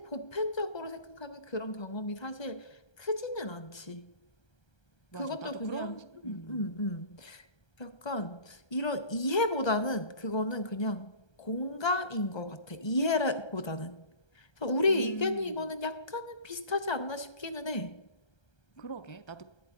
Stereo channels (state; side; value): late; right; 1.3 ms